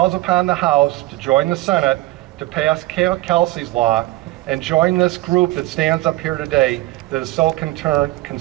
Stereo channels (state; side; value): quieter; left; 18.1 dB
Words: upon the House to join the Senate to pass Kelsey's law and join this group that stands up here today that is so